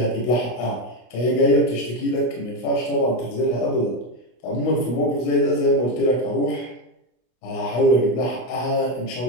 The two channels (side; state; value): right; late; 25 ms